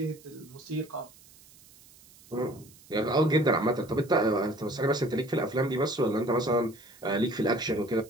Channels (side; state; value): right; noise; hiss, 24 dB below the sound